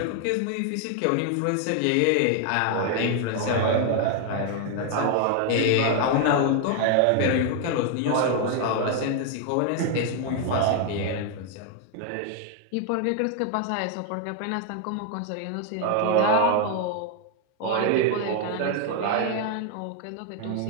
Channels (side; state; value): both; different; correlation 0.00